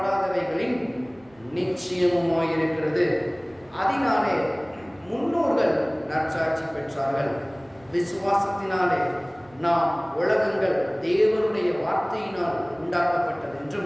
நிச்சயமுமாயிருக்கிறது. அதனாலே முன்னோர்கள் நற்சாட்சி பெற்றார்கள். விசுவாசத்தினாலே நாம் உலகங்கள் தேவனுடைய வார்த்தையினால்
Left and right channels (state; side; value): noise; right; rumble, 29 dB below the sound